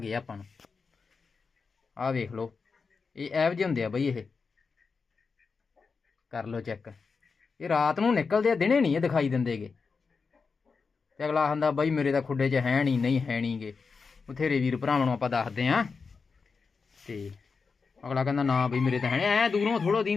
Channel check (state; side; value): quieter; right; 5.0 dB